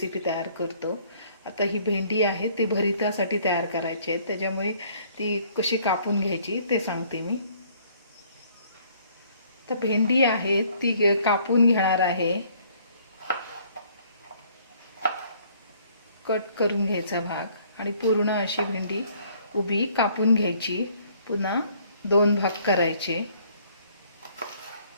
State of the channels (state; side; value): inverted; both; correlation -0.61